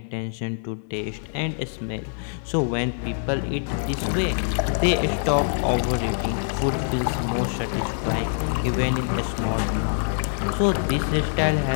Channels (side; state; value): right; silent; digital silence